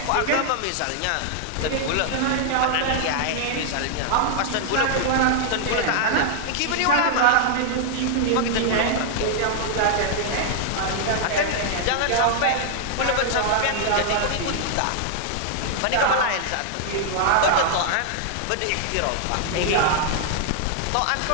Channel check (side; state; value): both; different; correlation -0.01